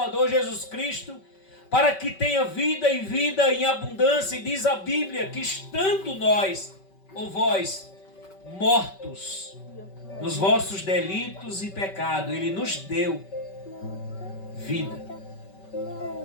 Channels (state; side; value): late; right; 5.2 ms